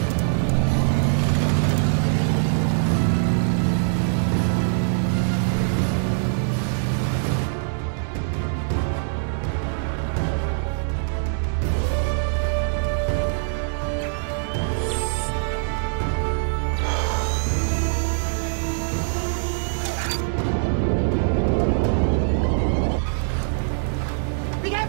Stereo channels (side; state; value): left; silent; digital silence